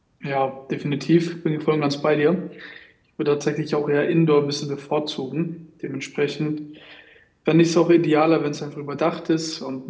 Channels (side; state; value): both; identical; correlation 1.00